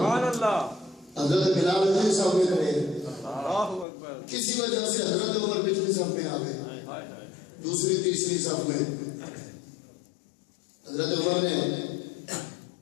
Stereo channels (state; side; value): drops out; right; at 3.9 s